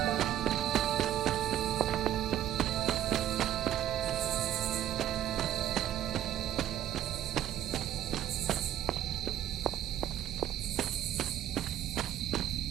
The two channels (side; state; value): left; quieter; 11.7 dB